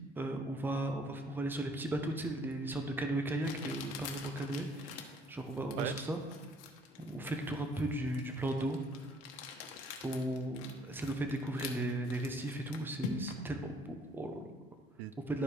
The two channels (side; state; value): both; normal; correlation 0.62